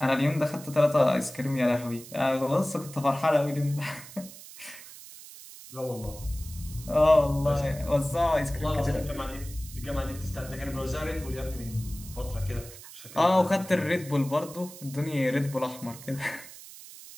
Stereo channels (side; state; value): right; noise; hiss, 16 dB below the sound